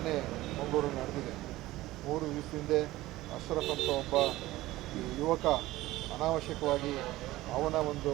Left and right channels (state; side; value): quieter; left; 17.3 dB